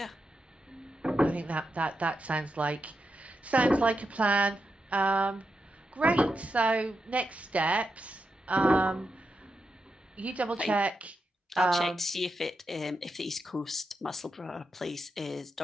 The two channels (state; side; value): normal; both; correlation 0.87